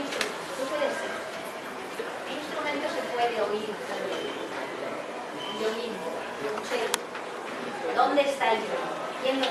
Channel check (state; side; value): identical; both; correlation 1.00